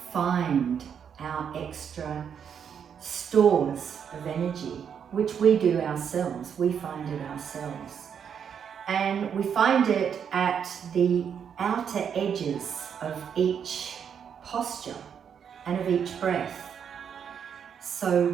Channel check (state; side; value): quieter; left; 7.7 dB